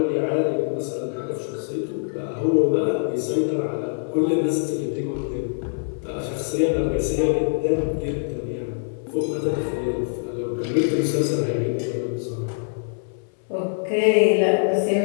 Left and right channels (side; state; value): right; silent; 63 dB below the other